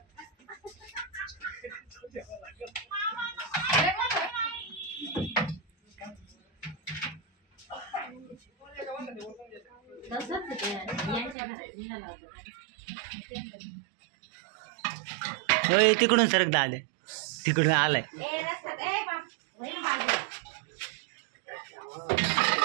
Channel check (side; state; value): left; drops out; at 11.4 s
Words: तिकडून सरक दाले तिकडून आलाय.